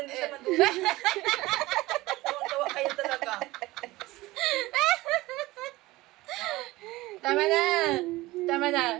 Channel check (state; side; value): quieter; left; 19.2 dB